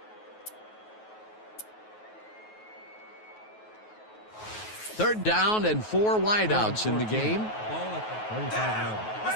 Third down and 4 wideouts in the game. Ball at the 35-yard line.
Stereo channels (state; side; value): late; right; 9.3 ms